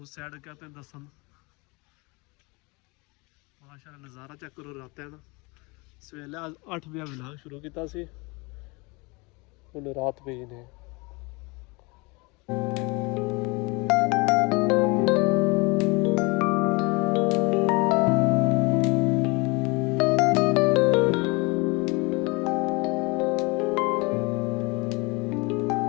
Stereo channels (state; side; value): quieter; right; 27.0 dB